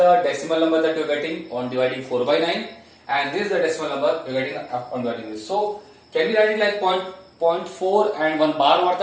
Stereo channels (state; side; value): identical; both; correlation 1.00